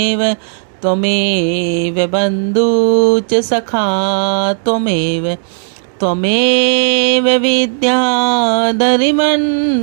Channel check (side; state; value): left; silent; digital silence